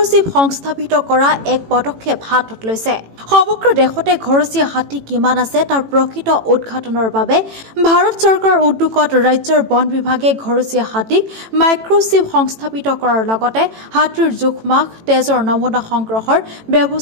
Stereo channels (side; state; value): left; late; 18 ms